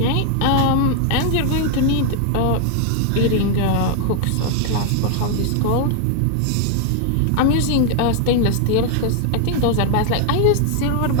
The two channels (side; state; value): both; different; correlation 0.00